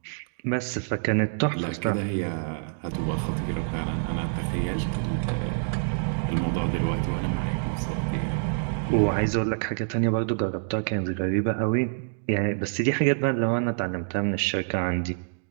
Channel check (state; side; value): silent; left; digital silence